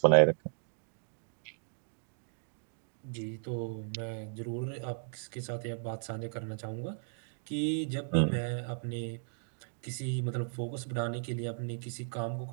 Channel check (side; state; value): left; silent; digital silence